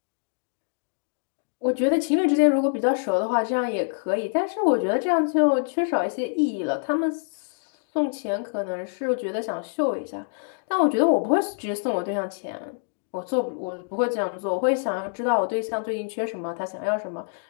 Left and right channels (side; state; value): right; silent; digital silence